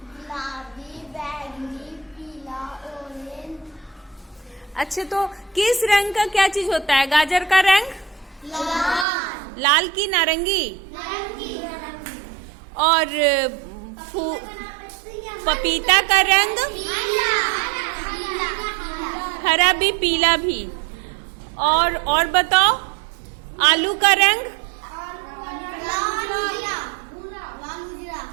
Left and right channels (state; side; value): drops out; left; at 9.1 s